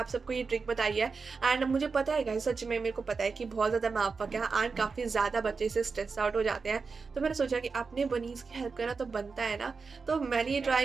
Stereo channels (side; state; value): left; quieter; 4.8 dB